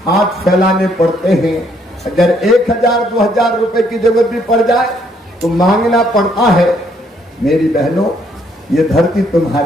हाथ फैलाने पड़ते हैं। अगर 1000-2000 रुपए की जरूरत भी पड़ जाए तो मांगना पड़ता है। मेरी बहनों, ये धरती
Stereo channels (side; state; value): both; normal; correlation 0.69